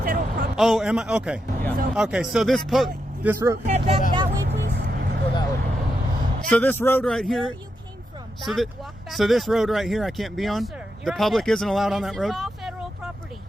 federal property. Oh, am I? Okay. So Okay, so this road. head back that way, please. Go that way. So this road right Where here. you came from. So Back, that. walk back So this that way. road right here, I can't be on. No, sir. The You're on public fed- isn't allowed on that road. This is all federal property.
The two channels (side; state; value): both; normal; correlation 0.85